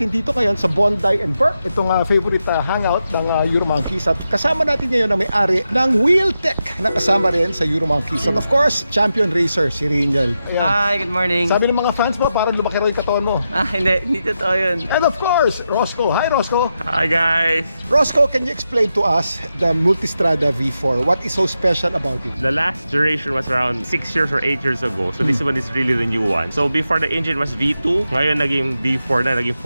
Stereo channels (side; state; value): both; inverted; correlation -0.88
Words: dito ngayon sa Bondi and Burke. Itong favorite hangout ng Euro Monkeys. At kasama natin ngayon ang may-ari ng Wheeltech na kasama rin sa Euro Monkeys. At of course, champion racer si Riniel. Hi, good morning. Sabi ng mga fans mo, parang lumaki raw yung katawan mo. Hindi totoo yun. And of course, Roscoe. Hi, Roscoe. Hi, guys. Roscoe, can you explain to us the Multistrada V4? What is so special about it? The last generation was around 6 years or 8 years ago. So this one is really the new one. So before the engine was V2, ngayon naging V4 na, naging